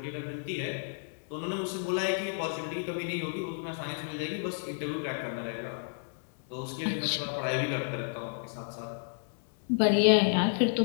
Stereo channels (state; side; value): silent; right; digital silence